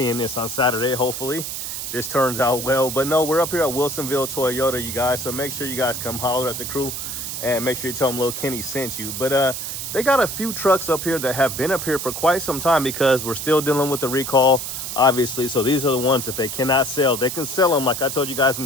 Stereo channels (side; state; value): right; noise; hiss, 5 dB below the sound